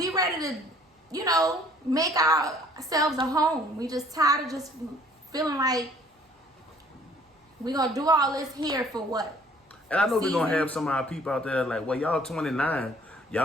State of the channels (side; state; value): both; normal; correlation 0.57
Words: ready to, make ourselves a home. We just tired of just feeling like we're going to do all this here for what? And I know we're going to have some of our people out there like, well, y'all 29.